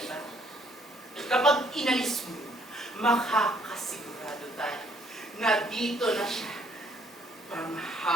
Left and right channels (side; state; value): both; normal; correlation 0.65